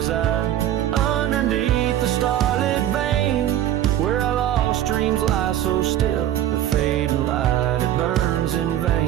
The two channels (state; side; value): quieter; left; 11.9 dB